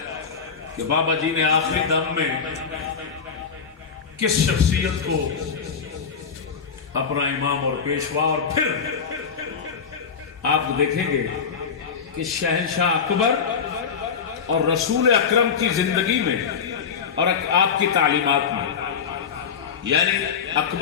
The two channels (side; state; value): right; quieter; 6.3 dB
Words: کہ بابا جی نے آخری دم میں کس شخصیت کو اپنا امام اور پیشوا، اور پھر آپ دیکھیں گے کہ شہنشاہ اکبر اور رسول اکرم کی زندگی میں اور آپ کی تعلیمات میں، یعنی